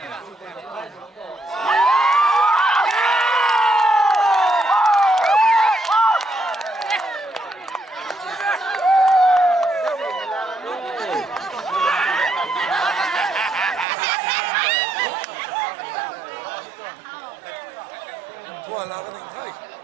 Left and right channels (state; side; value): drops out; left; at 13.9 s